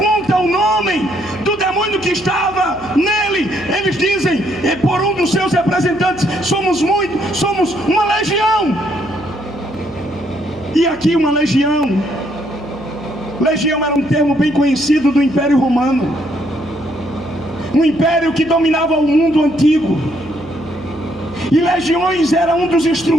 o nome do demônio que estava nele, eles dizem, por um dos seus representantes, somos uma legião. E aqui uma legião. Legião era um termo bem conhecido do Império Romano, um império que dominava o mundo antigo. E legiões era um dos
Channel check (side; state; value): left; noise; hum, 21 dB below the sound